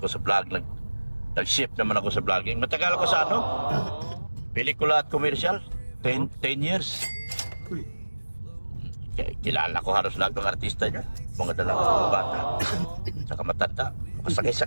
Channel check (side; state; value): both; inverted; correlation -1.00